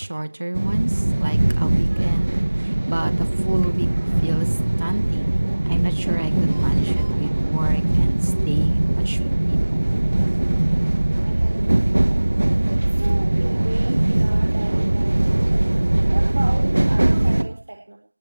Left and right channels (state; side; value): inverted; both; correlation -1.00